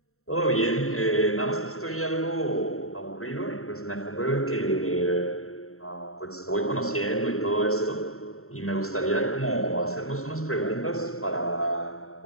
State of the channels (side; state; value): right; late; 0.63 ms